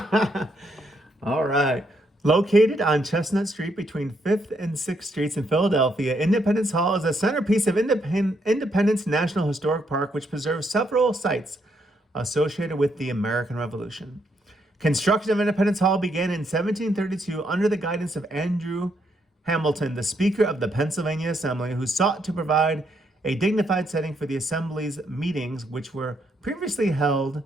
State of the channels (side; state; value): both; normal; correlation 0.75